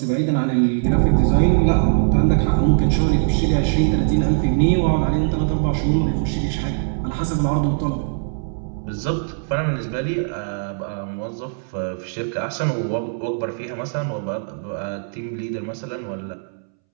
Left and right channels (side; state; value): left; silent; 65 dB below the other